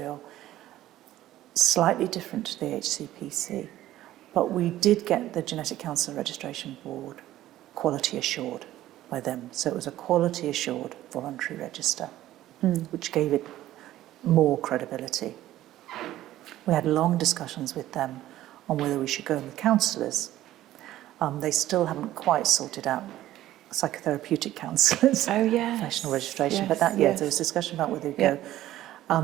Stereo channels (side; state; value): left; quieter; 14.2 dB